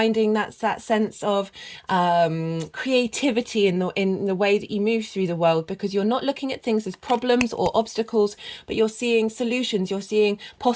that sense of creativity in the way that you move through the world, because you're not looking at things as problems or obstacles, but you're seeing solutions, you're seeing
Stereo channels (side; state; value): both; identical; correlation 1.00